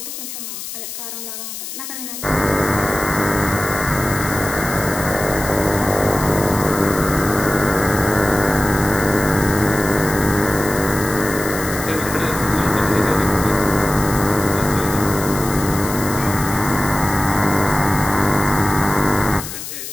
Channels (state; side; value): noise; left; hiss, 9 dB below the sound